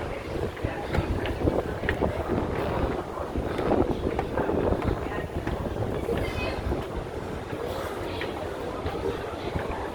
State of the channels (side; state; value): both; identical; correlation 1.00